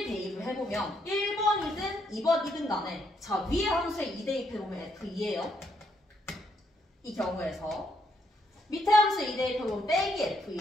대입을 해보면 1번이든 2번이든 간에 자 위에 함수에 2 대입해보면 f2예요. 이 경우에서 밑에 함수에 2 대입해보면 빼기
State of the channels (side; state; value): both; normal; correlation 0.75